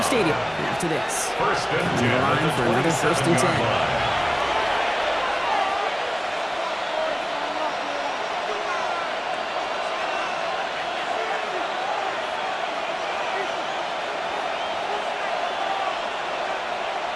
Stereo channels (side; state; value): both; identical; correlation 1.00